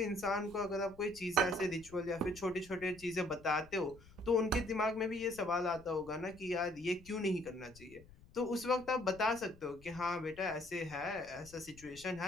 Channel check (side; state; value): left; noise; rumble, 22 dB below the sound